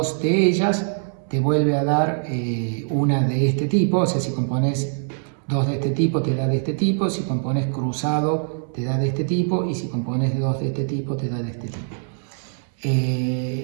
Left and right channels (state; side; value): silent; left; 64 dB below the other